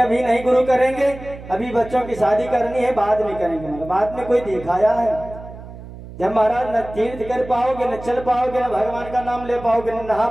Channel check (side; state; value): right; noise; hum, 15 dB below the sound